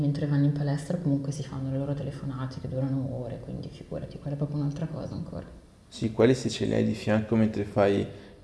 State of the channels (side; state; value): both; identical; correlation 1.00